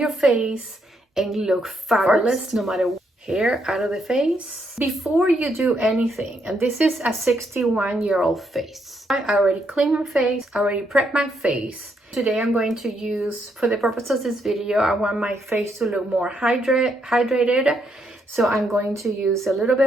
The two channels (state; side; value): normal; both; correlation 0.76